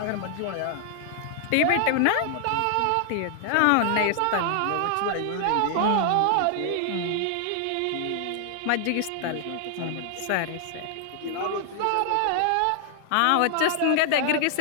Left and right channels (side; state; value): both; different; correlation 0.00